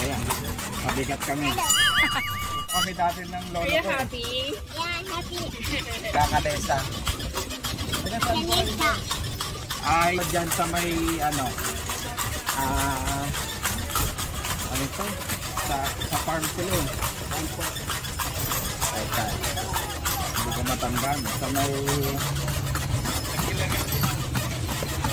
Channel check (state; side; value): identical; both; correlation 1.00